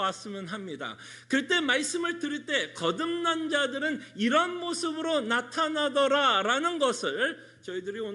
합니다. 그럴 때 말씀을 들을 때 거듭난 자들은 이런 모습으로 나타나더라라는 것을 저희들이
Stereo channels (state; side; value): identical; both; correlation 1.00